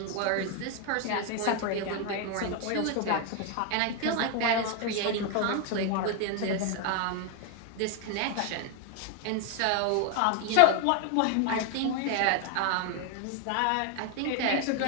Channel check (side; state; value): both; different; correlation 0.01